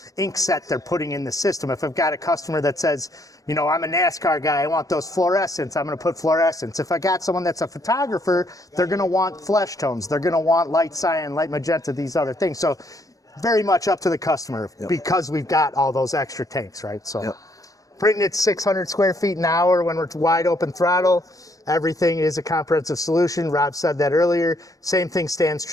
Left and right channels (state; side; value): late; right; 0.17 ms